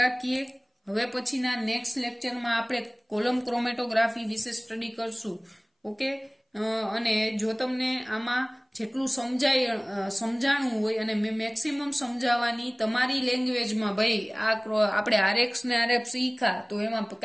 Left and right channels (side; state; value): both; identical; correlation 1.00